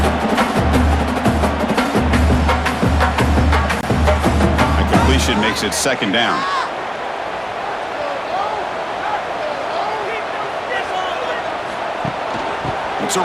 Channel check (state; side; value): identical; both; correlation 1.00